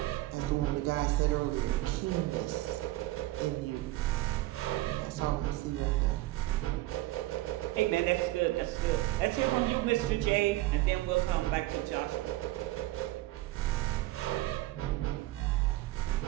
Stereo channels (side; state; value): left; quieter; 17.6 dB